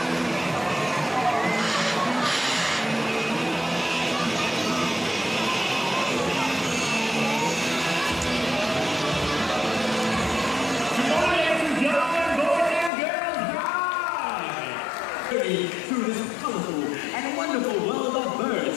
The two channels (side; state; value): right; drops out; at 12.9 s